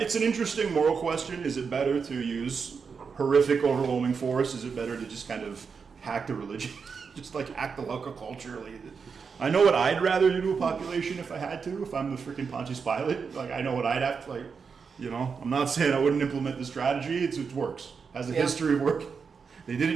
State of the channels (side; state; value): left; quieter; 5.7 dB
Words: an interesting moral question. Is it better to use horrific, overwhelming force? Is it better to just kind of hack the religion? Just like hack the local culture? I know what I'd rather do to a population if I had to, if I'm the freaking Pontius Pilate. Like, I know what I'd have to, I'm not saying I wouldn't implement the strategy. It works. Has a history of work. They did